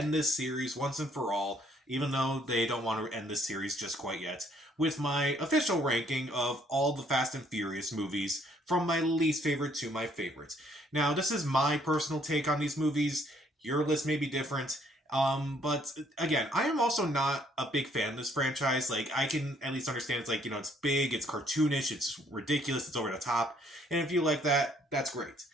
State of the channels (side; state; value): both; normal; correlation 0.65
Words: this series once and for all, even though they don't want to end this series just quite yet, with my official ranking of all the Fast and Furious movies from my least favorite to my favorite. Now, this is my personal take on these movies. Your list may be different. But again, I am also not a big fan of this franchise. Like, I can at least understand it's like, it's big, it's cartoonish, it's ridiculous, it's over the top. And if you like that, that's great.